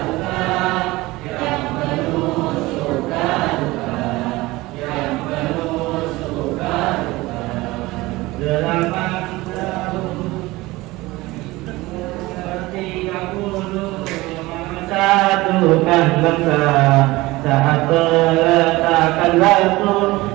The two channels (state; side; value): quieter; left; 20.1 dB